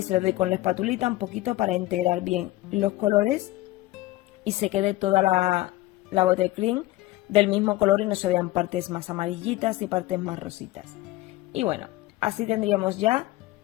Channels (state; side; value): quieter; right; 17.7 dB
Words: le doy con la espatulita un poquito para integrar bien los colores y se quede toda la buttercream del mismo color y no se vean partes más amarillitas y partes más rositas. Y bueno, así tendríamos ya